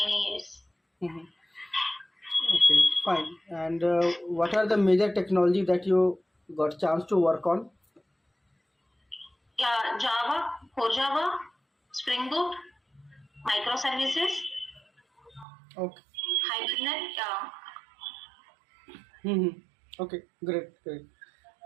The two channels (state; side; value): drops out; left; at 15.5 s